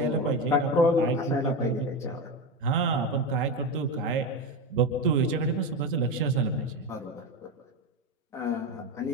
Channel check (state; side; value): normal; both; correlation 0.17